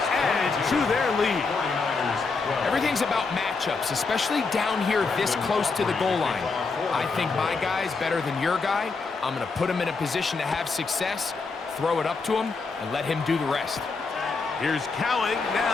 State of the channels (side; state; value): right; quieter; 4.4 dB